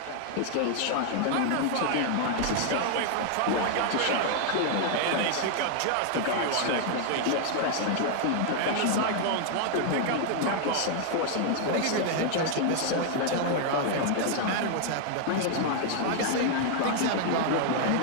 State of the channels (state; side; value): different; both; correlation 0.00